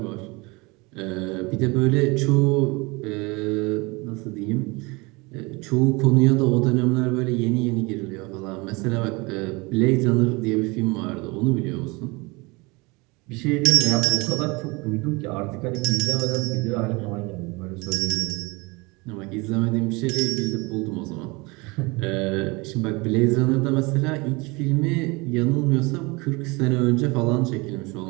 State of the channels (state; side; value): quieter; left; 25.9 dB